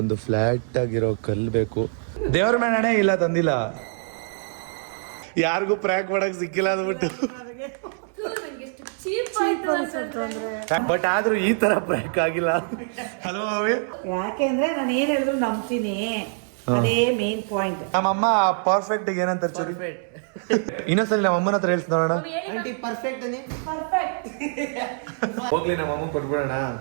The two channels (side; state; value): left; silent; digital silence